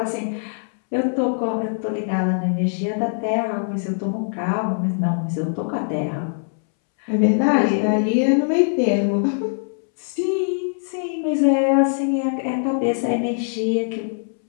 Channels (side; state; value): right; silent; 64 dB below the other